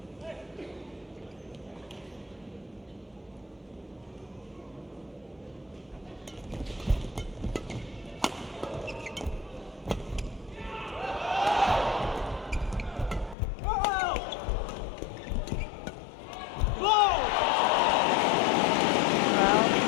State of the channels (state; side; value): drops out; right; at 13.4 s